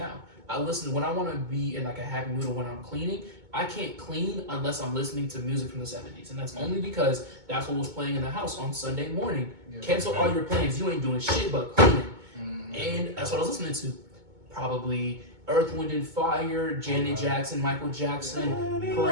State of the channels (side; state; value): left; late; 2.2 ms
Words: I listen when I want to be in like a happy mood or when I'm cleaning. I can't clean unless I'm listening to music from the 70s, and that's only because that's what was playing in the house on Sunday morning. Cancel all your plans. You ain't doing shit but cleaning, and that's what I was listening to. Probably Earth, Wind and Fire, Janet Jackson, Michael Jackson,